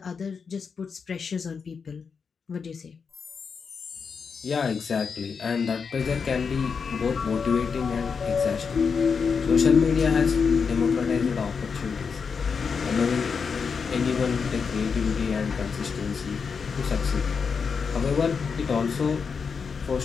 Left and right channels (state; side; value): quieter; right; 5.7 dB